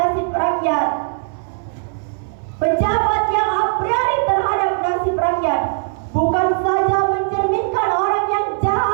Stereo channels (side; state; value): left; silent; 59 dB below the other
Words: rakyat, pejabat yang a priori terhadap nasib rakyat, bukan saja mencerminkan orang yang